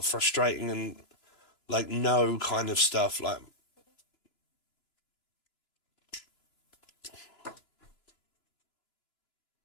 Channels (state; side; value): late; right; 2.9 ms